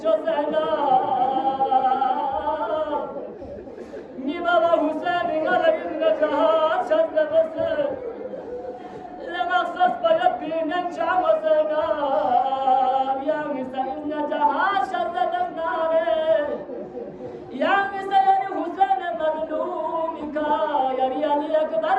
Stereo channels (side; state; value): both; identical; correlation 1.00